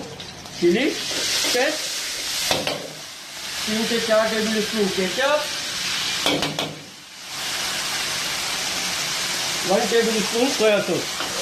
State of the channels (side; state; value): both; identical; correlation 1.00